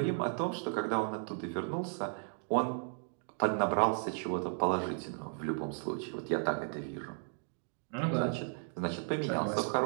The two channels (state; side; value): silent; left; 54 dB below the other